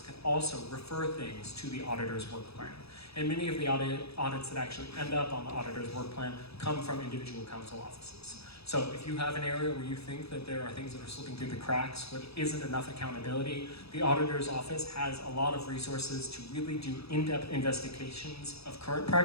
can also refer things to the auditor's work plan. And many of the audits that actually end up on the auditor's work plan come from individual council offices. So if you have an area where you think that there are things that are slipping through the cracks, where there isn't enough accountability, the auditor's office has a lot of resources to really do in-depth investigations of current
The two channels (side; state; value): right; late; 0.78 ms